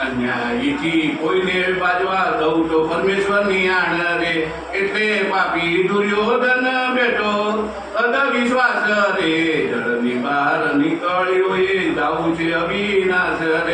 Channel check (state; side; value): identical; both; correlation 1.00